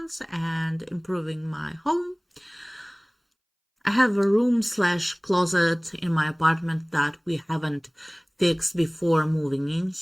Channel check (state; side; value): identical; both; correlation 1.00